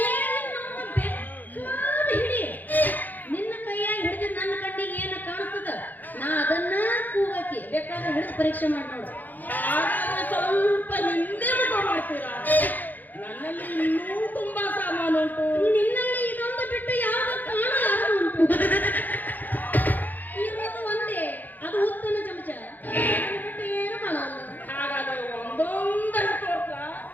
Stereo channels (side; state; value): right; late; 0.085 ms